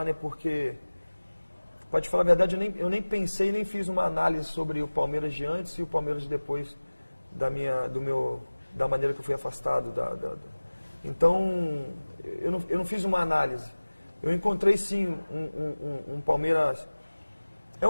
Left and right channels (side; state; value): both; inverted; correlation -1.00